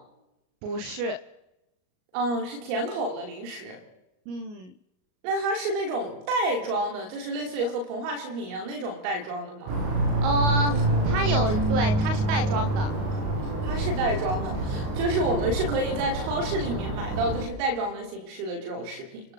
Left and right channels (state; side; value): late; left; 38 ms